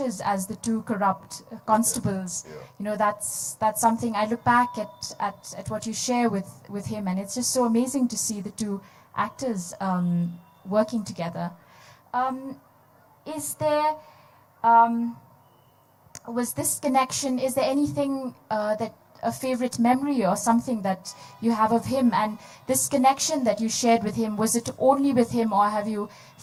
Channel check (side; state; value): both; identical; correlation 1.00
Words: as the two corrupt constables. That's something I look back at what you share with him, and it's just so amazing to see the two actors working together. Is there, was this connection, is there anything that a favorite memory or something that you have of him, and this connection that you shared with him, was it only with him, or have you